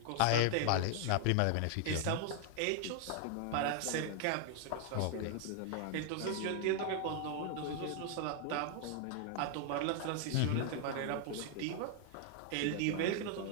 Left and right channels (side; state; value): both; different; correlation 0.00